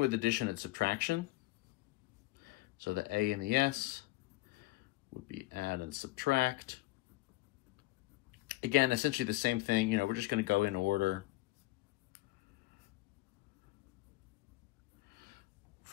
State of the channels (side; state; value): right; quieter; 19.4 dB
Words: addition and subtraction. So the A and the S would be add and subtract. Again, essentially the same thing. You know, we're just going to go in order